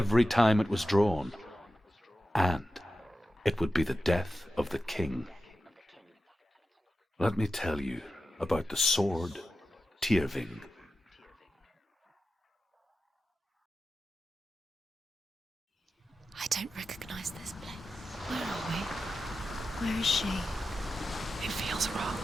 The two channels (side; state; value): both; normal; correlation 0.92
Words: time it was drawn, and it would be the death of the king. Let me tell you about the sword Tyrving. I don't recognize this place. Where are we? Where is she? It feels wrong.